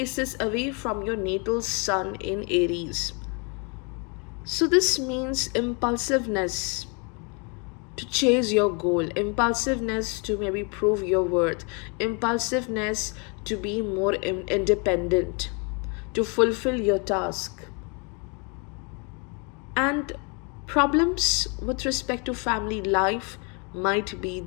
away from your natal sun in Aries. So this means impulsiveness to chase your goal, impulsiveness to maybe prove your worth, impulsiveness to be more independent, to fulfill your task. And problems with respect to family life might be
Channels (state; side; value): quieter; right; 34.1 dB